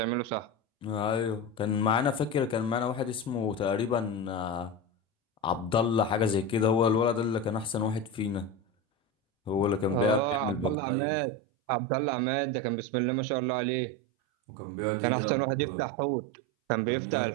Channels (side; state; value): left; drops out; at 10.8 s